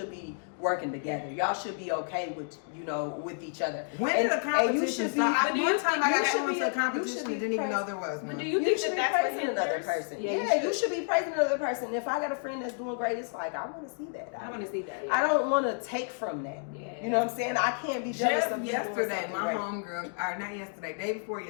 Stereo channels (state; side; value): silent; right; 58 dB below the other